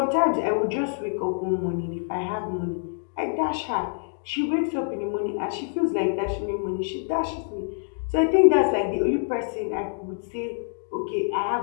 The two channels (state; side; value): silent; right; digital silence